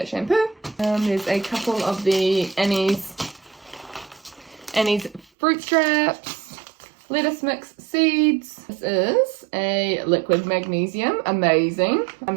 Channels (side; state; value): left; drops out; at 5.2 s